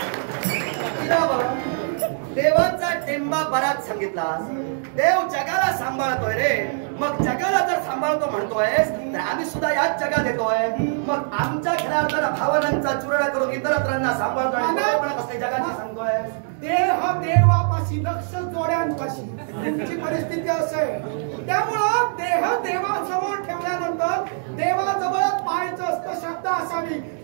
देवाचा टेंबा बराच सांगितला. देव जगाला सांभाळतोय रे. मग जगाला जर सांभाळतो म्हणतोयस तर आम्ही सुद्धा याच जगात येतोय. मग आमच्या खऱ्या भावनांचा चुराडा करून इतरांना सांभाळतोय, जगाची सांगतोय. देह देवापाशी, लक्ष जोड्यांपाशी तुमची परिस्थिती असेल. त्यामुळं देह देवासमोर ठेवल्यानंतर देवाजवळच पाहायचं असतं. श्रद्धा असावी.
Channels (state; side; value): silent; left; digital silence